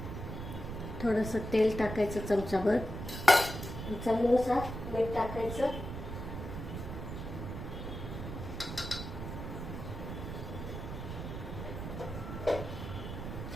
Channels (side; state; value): right; noise; rumble, 7 dB below the sound